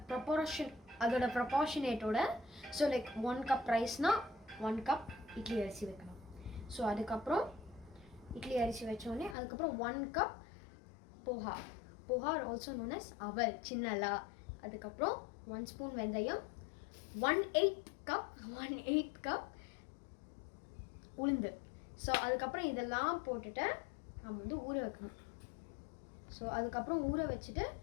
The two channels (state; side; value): drops out; right; at 9.3 s